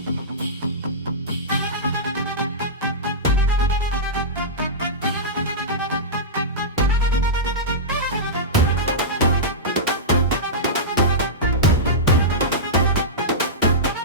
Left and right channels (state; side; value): normal; both; correlation -0.14